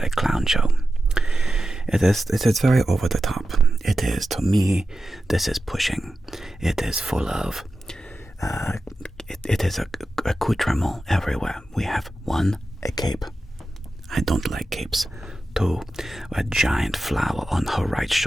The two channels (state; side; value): normal; both; correlation 0.92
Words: a clown show. It is very over the top. It is, to me, this is pushing. It is full of, it is accoutrement everywhere. We have 1, a cape. I don't like capes. 2, a giant flower on her right